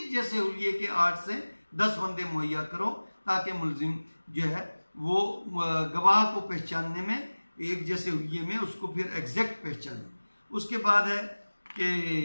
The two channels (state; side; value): inverted; both; correlation -1.00